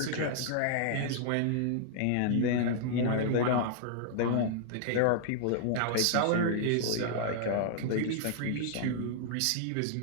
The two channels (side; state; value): both; different; correlation -0.01